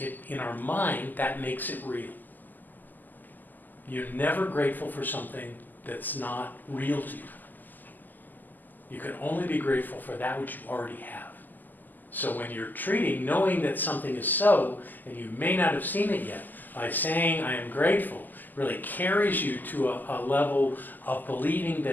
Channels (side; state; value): right; late; 0.086 ms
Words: in our mind, that makes it real. You're never grateful for something that's not real to you. You can only be grateful for that which you already have. So when you're treating, knowing that something is so, and you may not have seen it yet, by saying I am grateful, really carries you to a level of believing